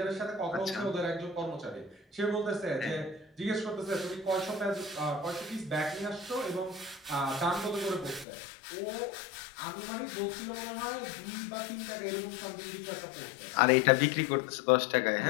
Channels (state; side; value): drops out; right; at 8.2 s